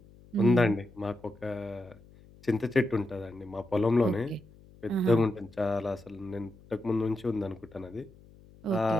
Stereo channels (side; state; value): left; noise; hum, 24 dB below the sound